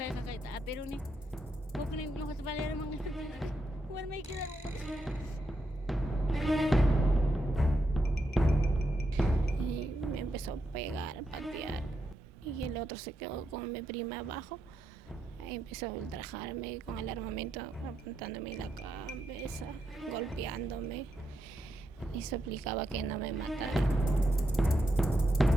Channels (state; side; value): normal; both; correlation 0.82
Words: pero ni bukni lo has valer mga warmay kita. Y me empezó a pegar, a patear. Y el otro se quedó con mi prima abajo. Ahí empezó a ultrajarme con el armamento, apuntándome en la cabeza, golpeándome. Y suplicaba que no me matara.